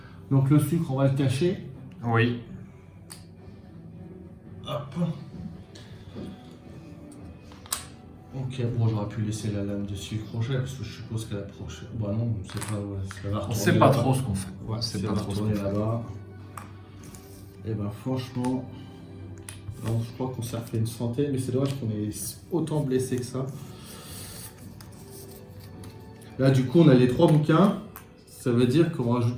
Donc le sucre, on va le cacher. Oui. Hop. Ok, bon, j'aurais pu laisser la lame de sucre crochet parce que je suppose qu'elle a prochaine. Bah non, on sait pas. Ouais, ça va On retourner sait pas là-bas. trop ce qu'on fait. Ouais, c'est ça pas va trop ce qu'on retourner fait. là-bas. Et ben franchement, alors, je crois qu'on s'est refait une centaine, mais c'est dommage qu'on ait autant blessé que ça. Là, du coup, on a les 3 bouquins. Ça veut dire qu'on rajoute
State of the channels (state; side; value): identical; both; correlation 1.00